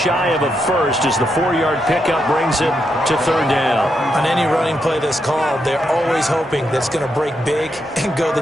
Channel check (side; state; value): both; normal; correlation 0.81